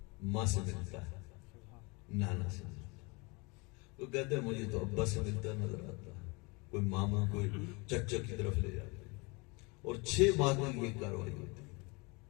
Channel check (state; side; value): quieter; right; 28.2 dB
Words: ماں سے ملتا ہے, نانا سے ملتا ہے, وہ کہتے ہیں مجھے تو ابا سے ملتا نظر آتا ہے, کوئی ماما کوئی چچا کی طرف لے جاتے ہیں, اور 6 ماہ تک یہ کاروائی ہوتی ہے.